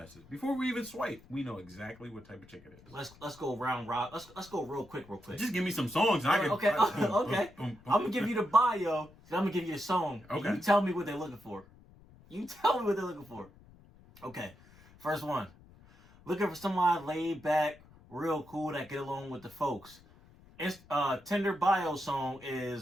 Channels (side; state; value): left; noise; rumble, 24 dB below the sound